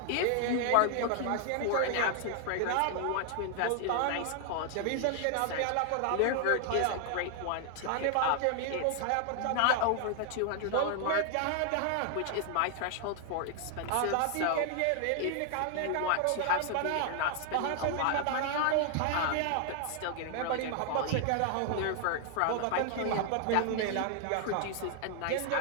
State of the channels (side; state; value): both; different; correlation 0.00